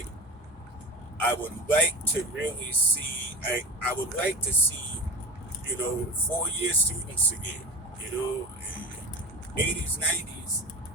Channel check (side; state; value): both; normal; correlation 0.30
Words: I would like to really see. I would like to see, 4-year students again. 80s, 90s.